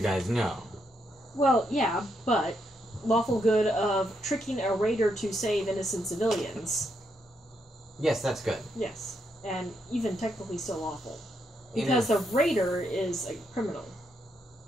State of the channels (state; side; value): normal; both; correlation 0.79